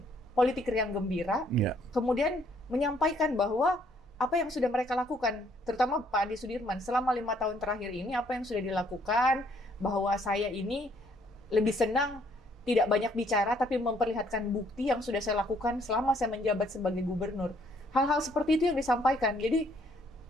politik riang gembira. Kemudian menyampaikan bahwa apa yang sudah mereka lakukan, terutama Pak Andi Sudirman, selama 5 tahun terakhir ini, apa yang sudah dilakukan, bahwa saya ini lebih senang tidak banyak bicara, tapi memperlihatkan bukti yang sudah saya lakukan selama saya menjabat sebagai gubernur. Hal-hal seperti itu yang disampaikan. Jadi,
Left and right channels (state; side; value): normal; both; correlation 0.66